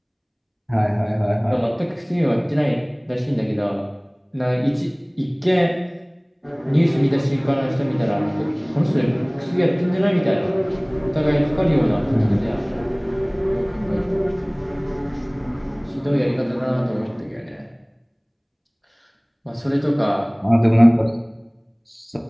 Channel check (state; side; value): identical; both; correlation 1.00